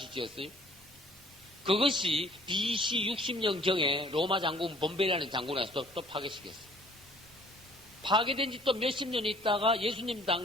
지었어요. 그것이 BC 60년경에 로마 장군 본베라는 장군에서 또 파괴시켰어요. 파괴된 지 또 몇십 년 있다가 예수님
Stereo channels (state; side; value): normal; both; correlation 0.56